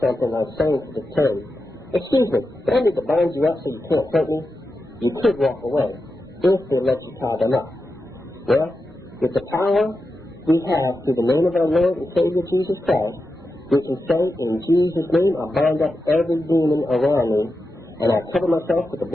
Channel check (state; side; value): normal; both; correlation 0.89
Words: like saying to the thug, excuse me, do I need to bind you up so you can't hurt me? You could walk away, if they let you tie them up. Well, with the power we have through the name of our Lord and Savior Jesus Christ, we can say, in Jesus' name, I bind up every demon around me, and I cover myself with the